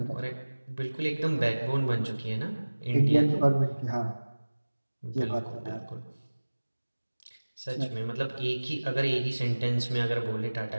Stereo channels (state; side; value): inverted; both; correlation -1.00